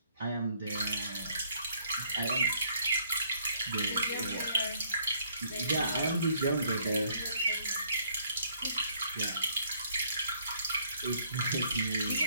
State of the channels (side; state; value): both; inverted; correlation -0.65